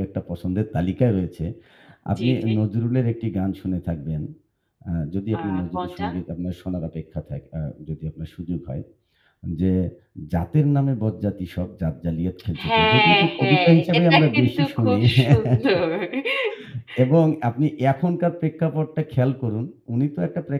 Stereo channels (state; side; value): identical; both; correlation 1.00